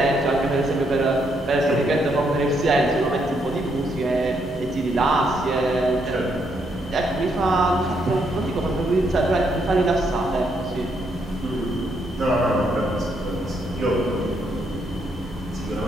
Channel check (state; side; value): normal; both; correlation 0.75